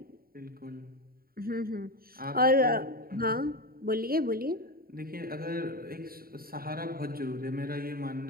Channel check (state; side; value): late; left; 0.43 ms